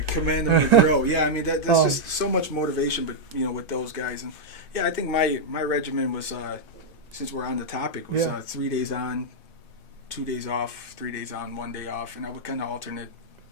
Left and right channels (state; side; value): normal; both; correlation -0.04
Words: command them to grow. Yeah, I mean that's just so much motivation, but with those guys, and yeah, I think my regimen was since we're on the topic was 3 days on, 2 days off, 3 days on, 1 day off, and I would kind of alternate